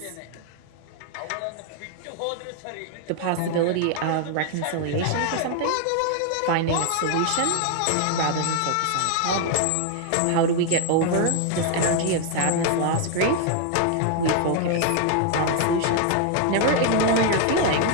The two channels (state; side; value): different; both; correlation 0.00